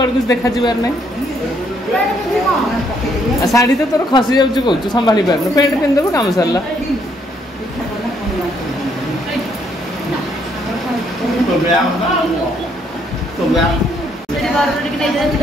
कुछ देखा जीवार नहीं साड़ी तो तोर खसी जाउछु कहू संभाली पार पेंट पिंदब काम सरला तो गया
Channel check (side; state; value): both; normal; correlation 0.70